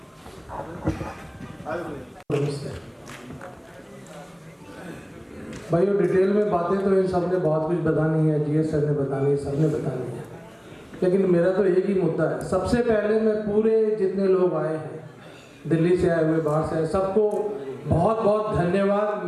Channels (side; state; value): both; identical; correlation 1.00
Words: भाई वो डिटेल में बातें तो इन सब ने बहुत कुछ बतानी है, जीएस सर ने बतानी है, सब ने बतानी है, लेकिन मेरा तो एक ही मुद्दा है। सबसे पहले मैं पूरे जितने लोग आए हैं, दिल्ली से आए हुए, बाहर से आए, सबको बहुत बहुत धन्यवाद।